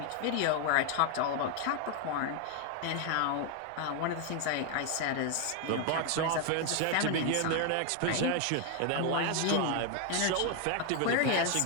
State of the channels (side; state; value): both; different; correlation 0.01